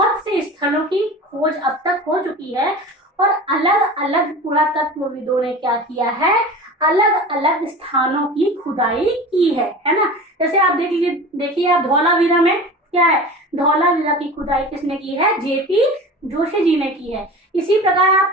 से स्थलों की खोज अब तक हो चुकी है, और अलग अलग पुरातत्वविदों ने क्या किया है, अलग अलग स्थानों की खुदाई की है ना। जैसे आप देखिए आप धौलावीरा में क्या है, धौलावीरा की खुदाई किसने की है, जेपी जोशी जी ने की है। इसी प्रकार आप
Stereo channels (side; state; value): both; normal; correlation 0.35